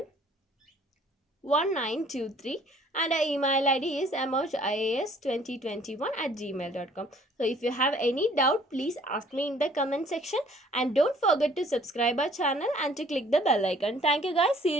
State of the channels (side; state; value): both; normal; correlation 0.57